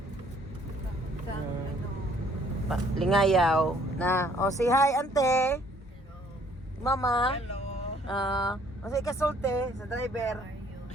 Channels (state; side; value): normal; both; correlation 0.61